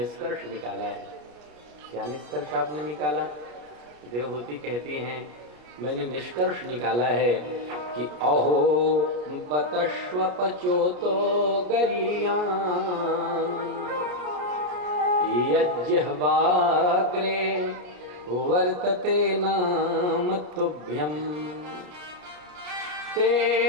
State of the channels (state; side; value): late; left; 33 ms